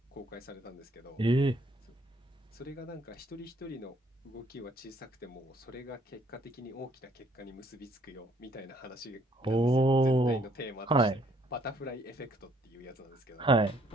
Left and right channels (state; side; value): normal; both; correlation 0.65